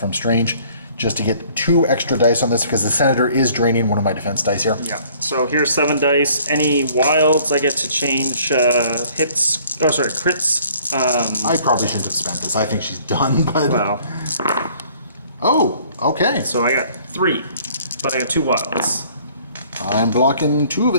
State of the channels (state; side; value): inverted; both; correlation -0.57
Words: Strange, just to get 2 extra dice on this because the Senator is draining one of my defense dice here. Yeah. So here's 7 dice. Any wilds, I get to change hits. Oh, sorry, crits. I probably shouldn't have spent this. I think she's done, but... Well. Oh, okay. So I got 3, but I got 2 wilds. I'm blocking 2 of